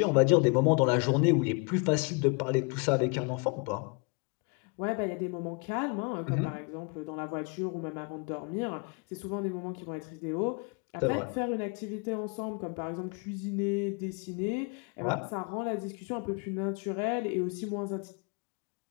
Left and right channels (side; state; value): right; quieter; 33.4 dB